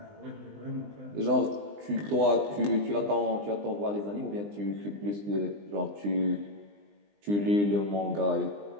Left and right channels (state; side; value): late; left; 20 ms